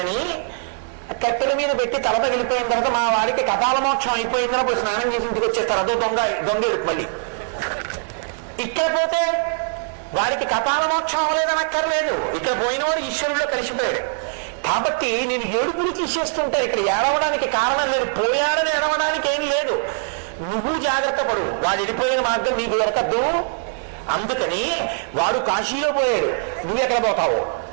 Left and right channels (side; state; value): left; silent; digital silence